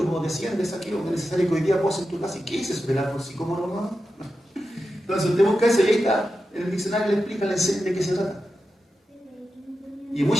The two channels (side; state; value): both; normal; correlation 0.91